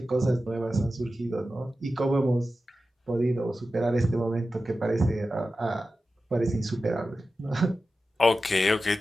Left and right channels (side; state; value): both; normal; correlation 0.93